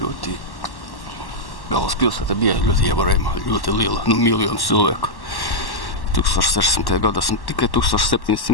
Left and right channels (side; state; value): right; late; 1.1 ms